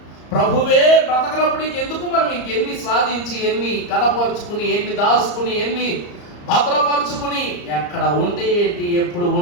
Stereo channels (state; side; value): late; right; 34 ms